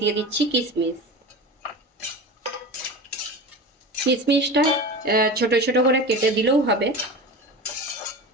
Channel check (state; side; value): normal; both; correlation 0.30